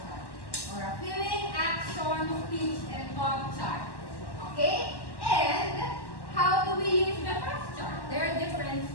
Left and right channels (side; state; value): right; late; 1.1 ms